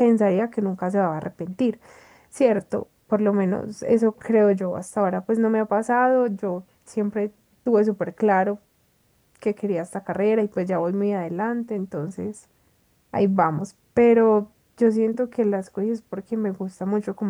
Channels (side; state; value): both; identical; correlation 1.00